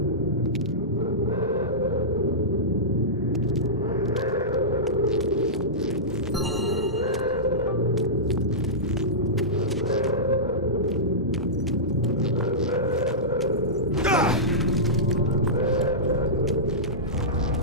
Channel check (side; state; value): both; normal; correlation -0.16